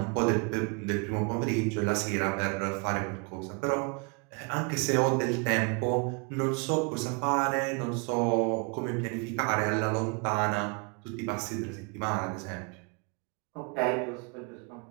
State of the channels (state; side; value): quieter; left; 33.5 dB